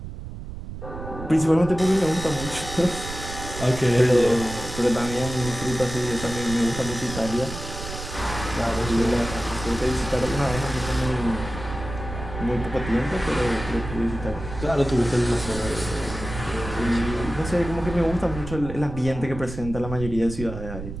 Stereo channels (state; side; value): noise; right; rumble, 9 dB below the sound